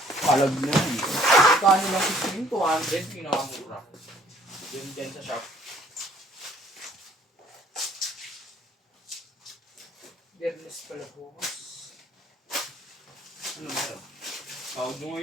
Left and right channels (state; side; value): normal; both; correlation 0.60